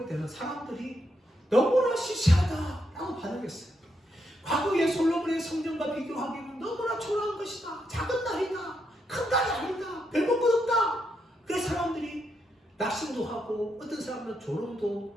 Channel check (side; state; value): both; normal; correlation 0.80